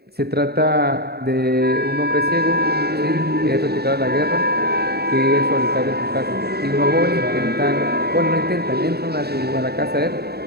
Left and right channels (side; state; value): left; late; 0.46 ms